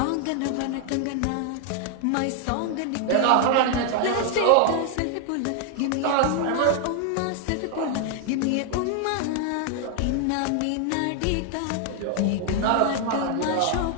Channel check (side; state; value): both; different; correlation 0.00